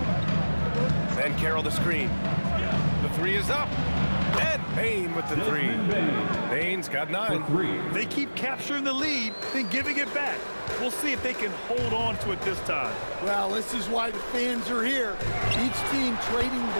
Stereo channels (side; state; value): both; inverted; correlation -1.00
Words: Banchero the screen. The 3 is up. And Bain with the 3. Bain's got 9. They keep capturing the lead, then giving it back. We'll see if they can hold on to it this time. Well, this is why the fans are here. Each team trading